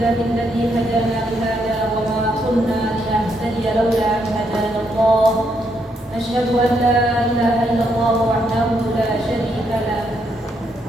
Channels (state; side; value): normal; both; correlation 0.76